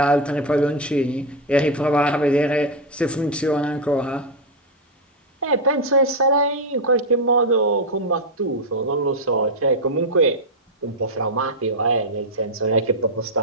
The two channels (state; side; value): normal; both; correlation 0.03